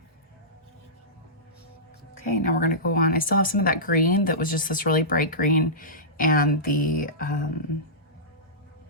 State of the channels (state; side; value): normal; both; correlation -0.18